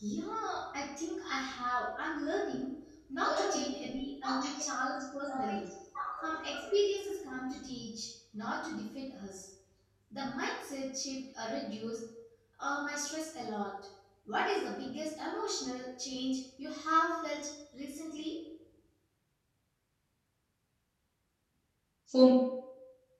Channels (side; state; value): both; identical; correlation 1.00